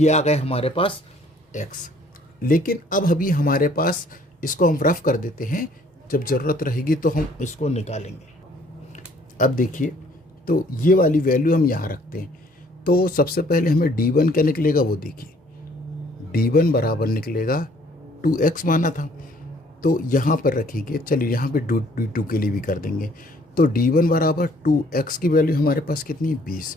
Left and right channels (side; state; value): both; normal; correlation 0.60